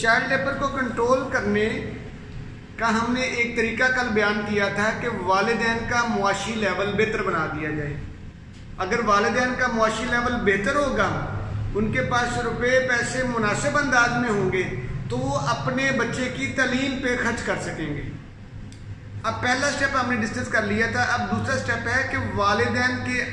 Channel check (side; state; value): both; identical; correlation 1.00